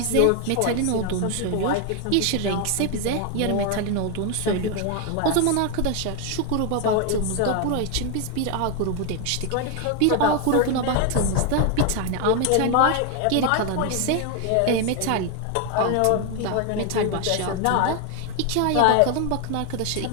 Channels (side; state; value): both; different; correlation 0.01